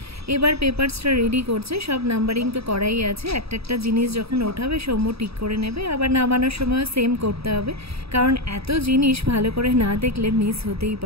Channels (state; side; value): late; left; 0.77 ms